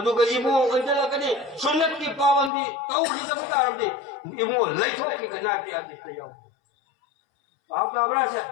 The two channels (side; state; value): right; drops out; at 2.5 s